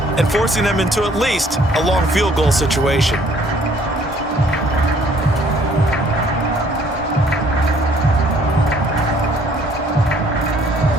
and forcing them into at least a long field goal situation.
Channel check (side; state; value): both; normal; correlation 0.60